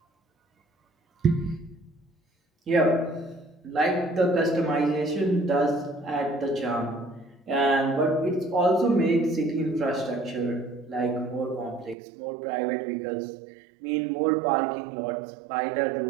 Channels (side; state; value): left; drops out; at 12.0 s